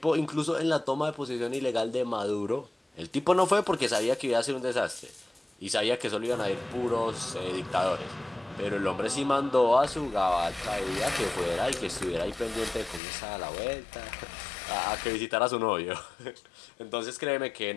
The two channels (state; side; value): drops out; right; at 13.0 s